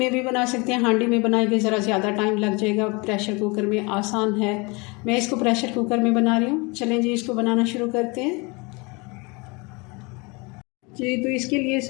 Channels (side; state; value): right; quieter; 27.9 dB